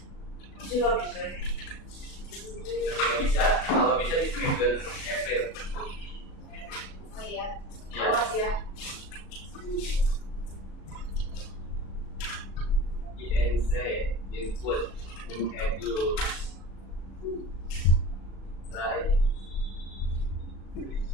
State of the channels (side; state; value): right; late; 37 ms